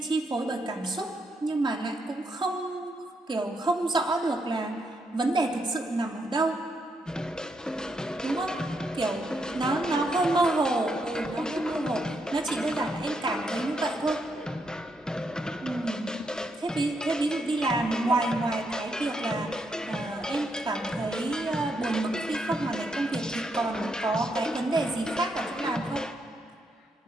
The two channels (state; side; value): normal; both; correlation 0.78